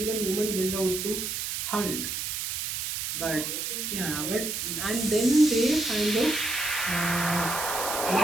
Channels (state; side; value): noise; right; hiss, 3 dB below the sound